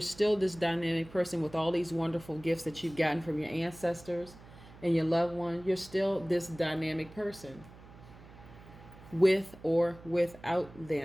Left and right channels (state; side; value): noise; right; hum, 20 dB below the sound